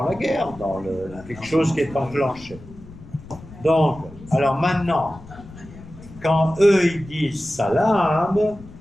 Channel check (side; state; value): left; noise; rumble, 18 dB below the sound